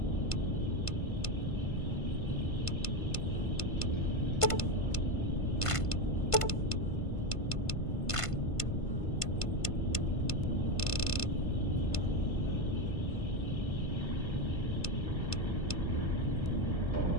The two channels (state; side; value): late; right; 1.5 ms